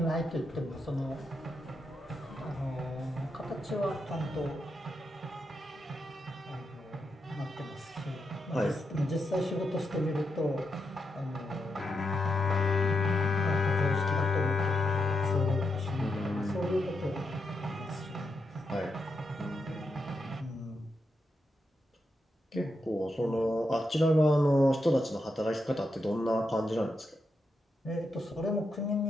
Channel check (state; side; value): normal; both; correlation 0.84